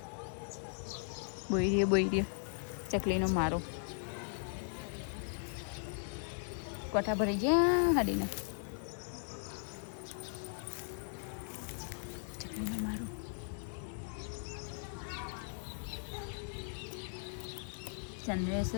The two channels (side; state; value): right; silent; 52 dB below the other